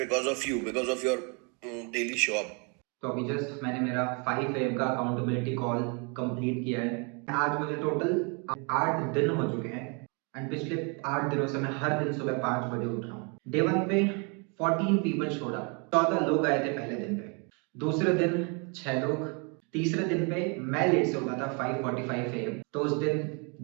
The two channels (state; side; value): quieter; left; 34.2 dB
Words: of you, because of your daily show up. तो अभी just मैंने मेरा 5 AM का accountability call complete किया है। आज मुझे टोटल 8 दिन हो चुके हैं एंड पिछले 8 दिनों से मैं हर दिन सुबह 5 बजे उठ रहा हूँ। डे 1 पे 14 पीपल शोड अप, 14 लोग आए थे पहले दिन पे। दूसरे दिन 6 लोग, तीसरे दिन पे मैं लेट से उठा था 5:45 AM, तो उस दिन